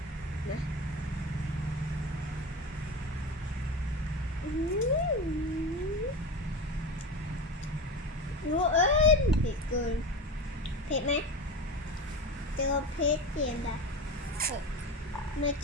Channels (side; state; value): both; normal; correlation 0.26